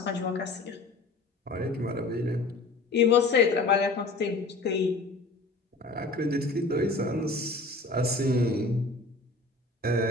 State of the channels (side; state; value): right; quieter; 3.3 dB